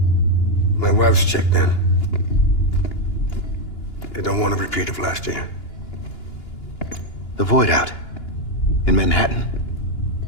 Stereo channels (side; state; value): right; late; 2.9 ms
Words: My wife's checked in. They don't want a repeat of last year. The Void Out in Manhattan.